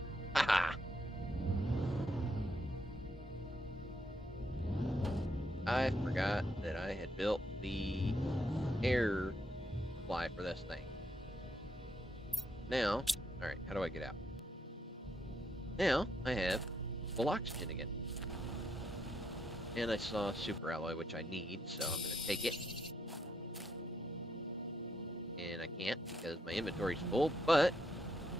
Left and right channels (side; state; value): both; normal; correlation 0.77